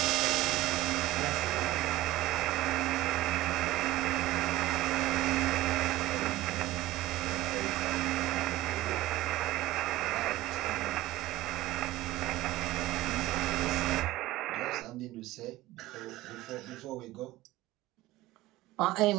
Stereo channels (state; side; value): quieter; left; 16.6 dB